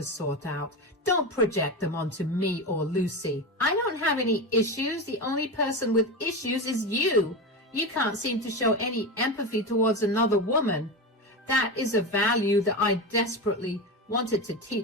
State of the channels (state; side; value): normal; both; correlation 0.20